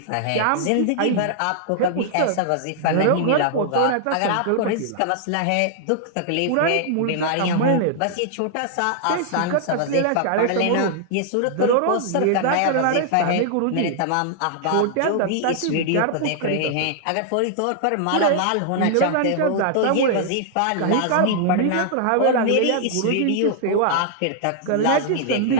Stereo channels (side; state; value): both; different; correlation -0.01